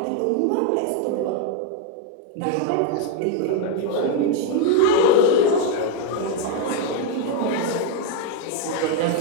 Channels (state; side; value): different; both; correlation 0.01